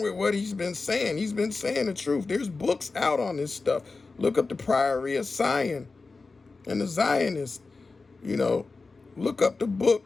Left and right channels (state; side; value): quieter; right; 4.0 dB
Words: with what he's been saying. He's been saying the truth. There's books out on this stuff. Look up the Priory of Zion and the Zionists. You know, look up the